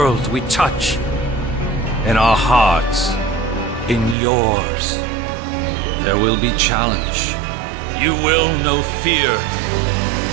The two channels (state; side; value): drops out; left; at 4.2 s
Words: we touch, in our hearts, in yours. There will be challenge. You will know fear,